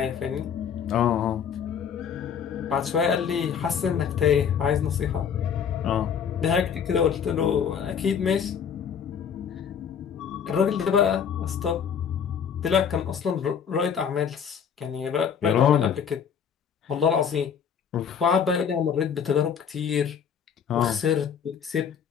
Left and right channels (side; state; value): right; quieter; 7.5 dB